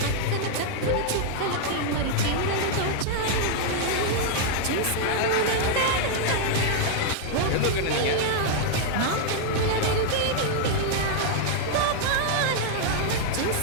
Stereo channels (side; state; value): both; different; correlation -0.01